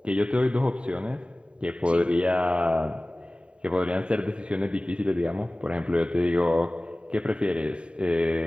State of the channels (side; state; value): left; late; 0.055 ms